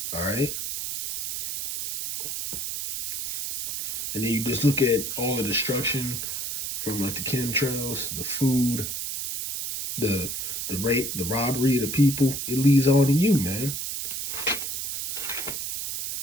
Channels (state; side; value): noise; right; hiss, 4 dB below the sound